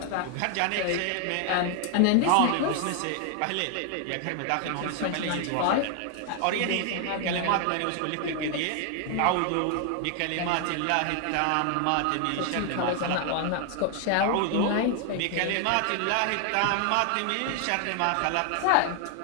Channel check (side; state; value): both; different; correlation 0.00